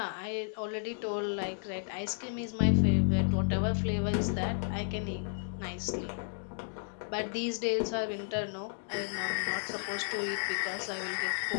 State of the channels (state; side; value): silent; right; digital silence